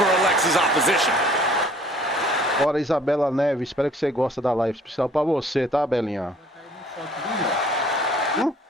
Alexa's opposition. Bora, Isabela Neves, espero que você goste da live especial pra você, tá, Belinha?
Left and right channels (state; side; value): normal; both; correlation 0.55